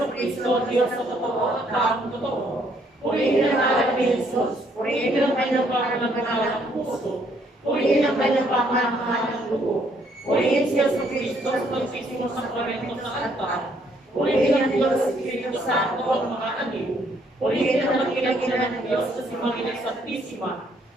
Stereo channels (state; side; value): normal; both; correlation 0.68